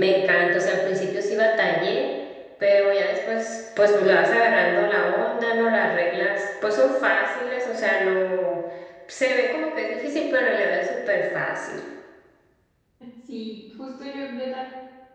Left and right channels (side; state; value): both; identical; correlation 1.00